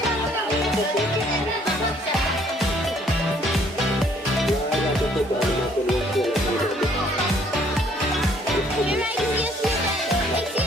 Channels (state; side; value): normal; both; correlation 0.62